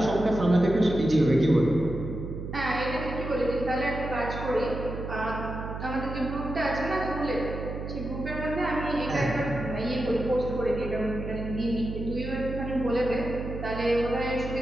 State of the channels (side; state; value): right; noise; hum, 7 dB below the sound